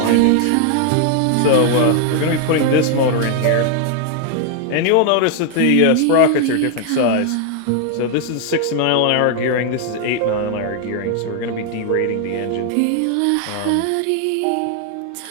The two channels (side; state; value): both; different; correlation 0.00